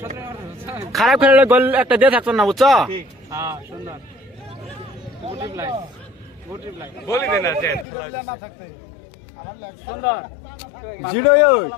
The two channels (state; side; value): drops out; right; at 7.9 s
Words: খারাপ খেলে গোল একটা দিয়ে থাকতো না বুঝছো